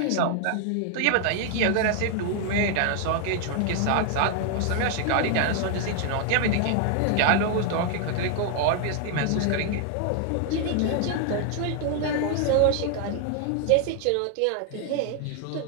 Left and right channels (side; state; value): both; different; correlation 0.00